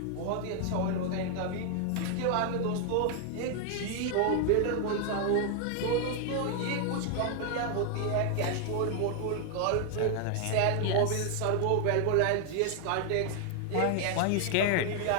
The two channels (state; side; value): different; both; correlation 0.00